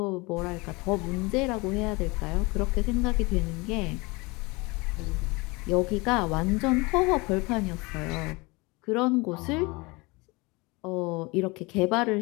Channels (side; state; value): right; quieter; 25.6 dB